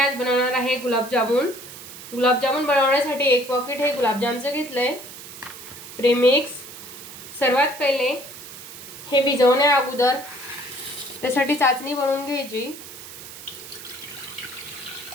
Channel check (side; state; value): right; noise; hiss, 14 dB below the sound